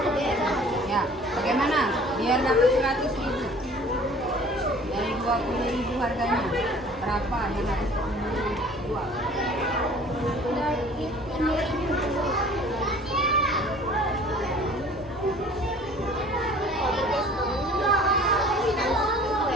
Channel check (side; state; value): both; normal; correlation 0.49